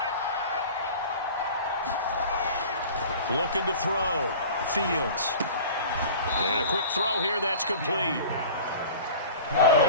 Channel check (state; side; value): inverted; both; correlation -0.40